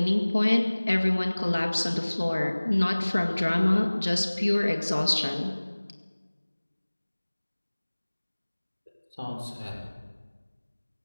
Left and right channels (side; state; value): both; inverted; correlation -1.00